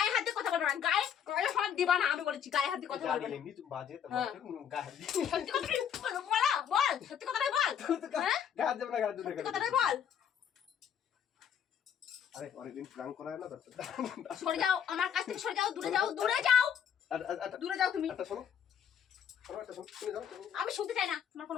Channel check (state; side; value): quieter; right; 8.5 dB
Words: হাত দিয়ে কথা বলবো না, গায়ে হাত দিবা না, আমি বলেছি গায়ে হাত দিয়ে কথা বলবো না। এমনি তুমি বাজে তো হ্যাঁ। গায়ে হাত দিই। সত্যি কথাটাই বলা, বল সত্যি কথাটাই বল। হ্যাঁ, গায়ে হাত দেবে না, গায়ে হাত দেবে না। সত্যি কথাটাই বল। আরে অনেকদিন প্ল্যান করা হয় না তো। সরে যাও আমার কাছ থেকে, সরে যাও, দূরে যাও, দূরে যাও, দূরে যাও তুমি। একটা শোনো, শোনো একটা শোনো, শুনে যাও। আমি শুনতে চাই না তোমার